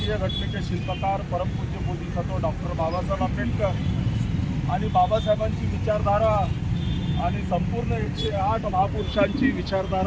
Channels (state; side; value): identical; both; correlation 1.00